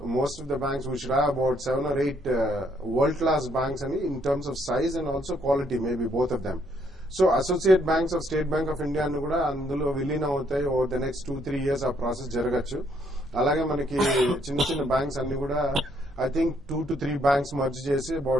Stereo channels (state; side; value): normal; both; correlation 0.70